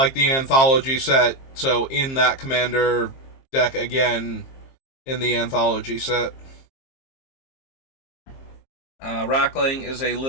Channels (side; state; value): right; late; 22 ms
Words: Anthology set, so in that Commander deck again in the Anthology set. Rackling is a